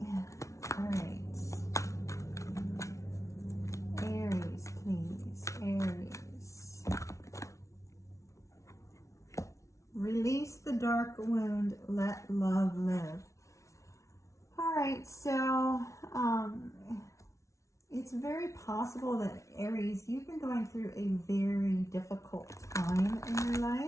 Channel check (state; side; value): late; right; 0.14 ms